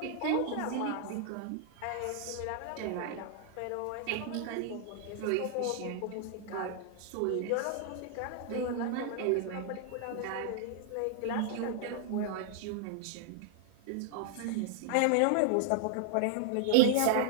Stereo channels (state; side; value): different; both; correlation 0.00